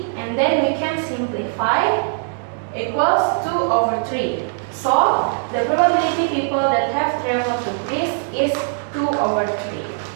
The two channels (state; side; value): silent; left; digital silence